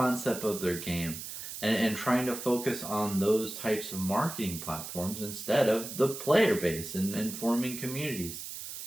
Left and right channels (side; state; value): right; noise; hiss, 9 dB below the sound